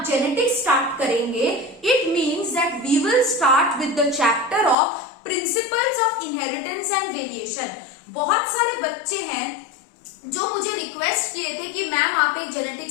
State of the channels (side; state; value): right; drops out; at 4.8 s